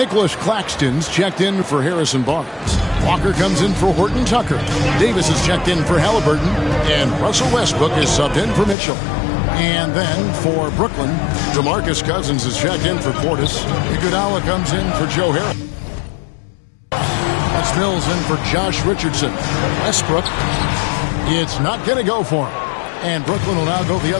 Claxton's checked in for Harrison Barnes. Walker comes in for Horton Tucker. Davis is checked in for Halliburton. And Russell Westbrook is subbed in for Mitchell. And then for Brooklyn, Demarcus Cousins is checked in for Portis. Iguodala comes in for Joe Harris. That's Mills in for Josh Richardson. Westbrook, it's not going to go for him. And Brooklyn will now go the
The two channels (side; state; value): right; drops out; at 8.8 s